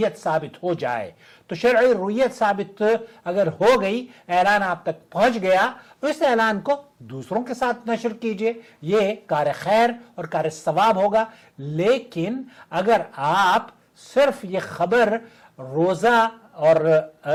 ثابت ہو جائے تو شرعی رؤیت ثابت اگر ہو گئی، اعلان آپ تک پہنچ گیا، تو اس اعلان کو دوسروں کے ساتھ نشر کیجئے، یہ کار خیر اور کار ثواب ہوگا۔ لیکن اگر آپ صرف یہ خبر روزہ اور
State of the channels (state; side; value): identical; both; correlation 1.00